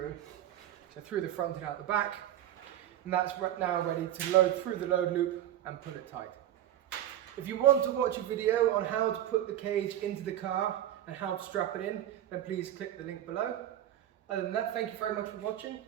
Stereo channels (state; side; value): quieter; left; 12.0 dB